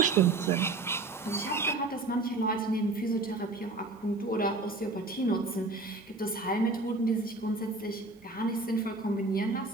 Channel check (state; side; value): quieter; left; 3.3 dB